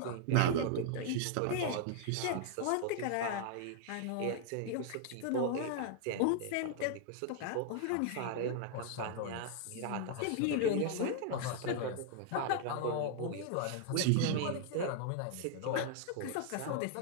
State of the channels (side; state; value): both; different; correlation 0.00